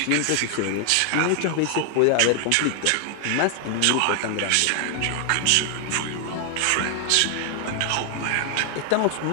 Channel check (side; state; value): both; different; correlation 0.00